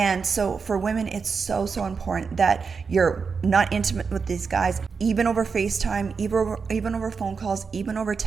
so for women, it's so important that you're not intimate with these guys, even over FaceTime, even over phone calls, even over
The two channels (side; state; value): left; quieter; 5.3 dB